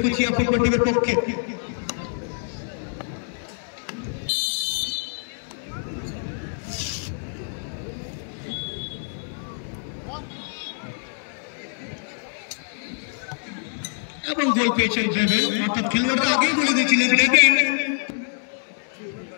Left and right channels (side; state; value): right; silent; digital silence